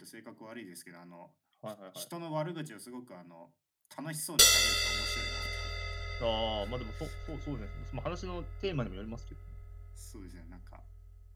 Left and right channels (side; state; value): both; identical; correlation 1.00